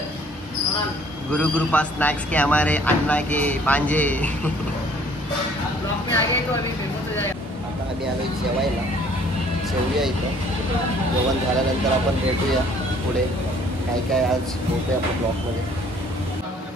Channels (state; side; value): normal; both; correlation 0.58